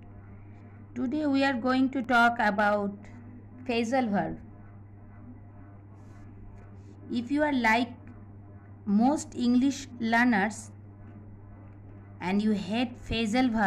Today we are going to talk about phrasal verb. If you are like most English learners and you hate phrasal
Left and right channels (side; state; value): both; identical; correlation 1.00